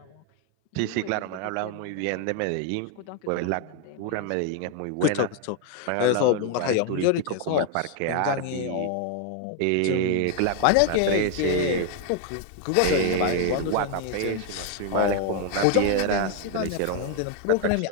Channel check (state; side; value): different; both; correlation 0.01